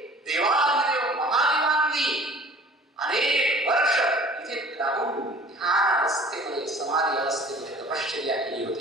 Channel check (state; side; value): normal; both; correlation 0.48